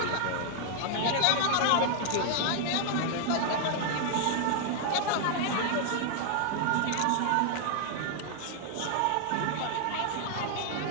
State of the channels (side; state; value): both; different; correlation 0.00